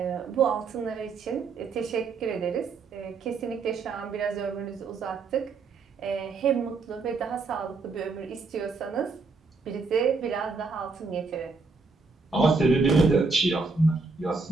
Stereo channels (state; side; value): quieter; left; 4.2 dB